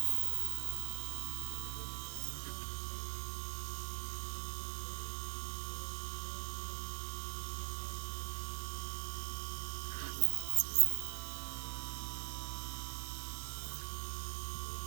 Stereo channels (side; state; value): left; silent; digital silence